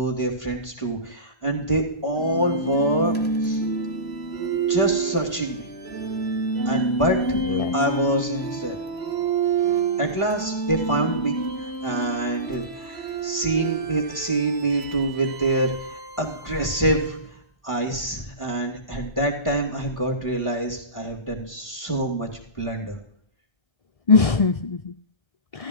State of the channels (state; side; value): late; right; 1.3 ms